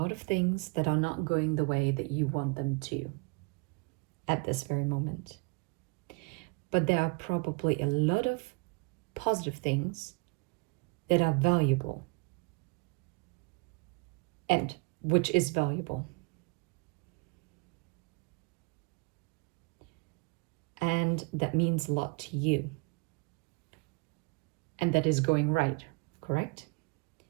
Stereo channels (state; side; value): quieter; left; 30.8 dB